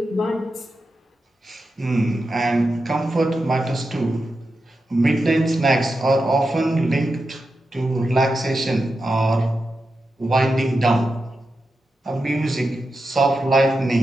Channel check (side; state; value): both; normal; correlation 0.89